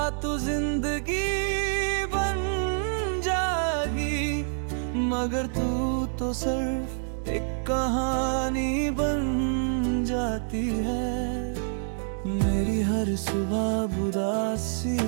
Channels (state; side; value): silent; left; digital silence